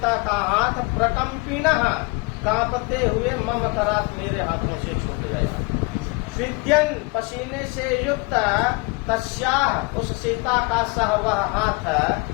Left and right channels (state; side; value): quieter; right; 27.6 dB